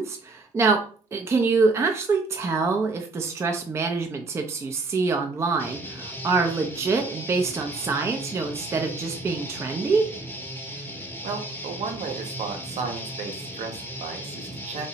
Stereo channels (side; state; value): left; quieter; 3.6 dB